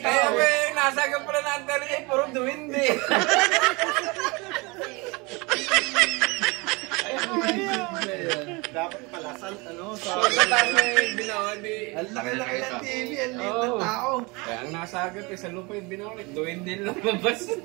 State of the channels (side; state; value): left; quieter; 26.6 dB